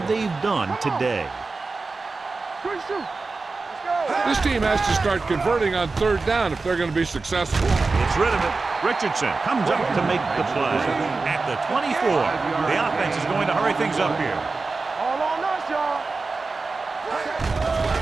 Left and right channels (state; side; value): quieter; left; 3.9 dB